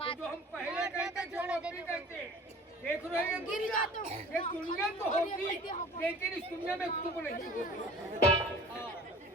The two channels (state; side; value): normal; both; correlation 0.45